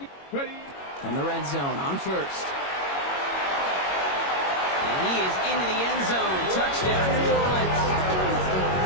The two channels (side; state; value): right; late; 21 ms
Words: From the red zone on first. And he is into the end zone. Touchdown, New Orleans.